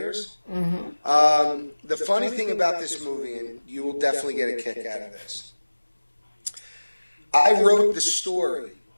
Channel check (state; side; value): inverted; both; correlation -1.00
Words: The funny thing about this movie, and you will definitely get a kick out of this, I wrote the story,